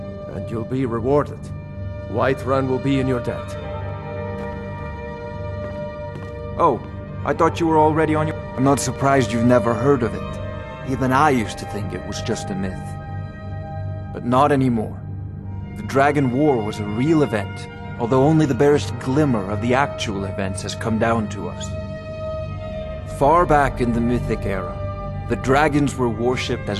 and you'll be rewarded. Whiterun will be in your debt. Oh, I thought you were already on your... I'm not surprised you've never heard of it. Even I used to think it was just a myth. But not anymore. The Dragon War was a real event, although only the barest glimmer of the actual events has come down to us. Far back in the Mythic era, the dragons were worshipped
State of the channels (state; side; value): identical; both; correlation 1.00